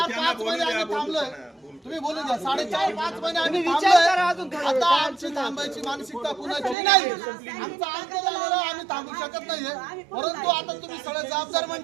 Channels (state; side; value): drops out; left; at 6.8 s